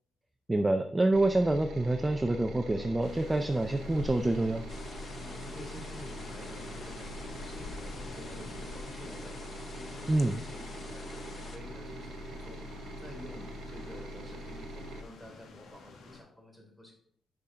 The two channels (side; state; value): both; normal; correlation 0.94